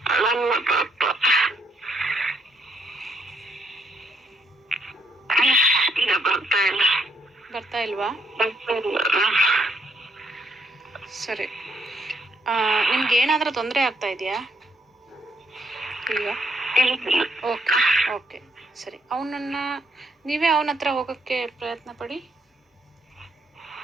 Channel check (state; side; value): normal; both; correlation 0.71